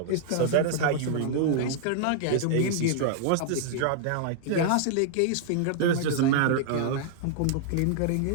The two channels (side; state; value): both; different; correlation -0.01